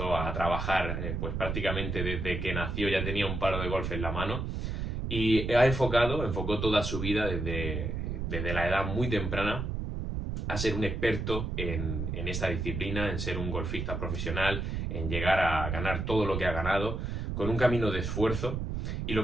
a trabajar pues prácticamente desde que nació, ya tenía un palo de golf en la mano y enfocó toda su vida desde la edad muy temprana a ser un experto en esta disciplina, en ser un golfista profesional, en llegar a ganar todo lo que ha ganado, con un camino de esfuerzo. Y lo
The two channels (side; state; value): right; noise; rumble, 3 dB below the sound